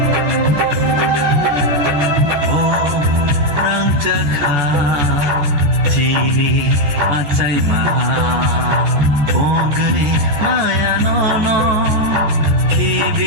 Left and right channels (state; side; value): late; left; 14 ms